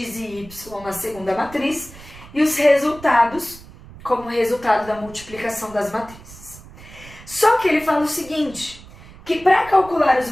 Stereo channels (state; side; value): noise; right; rumble, 19 dB below the sound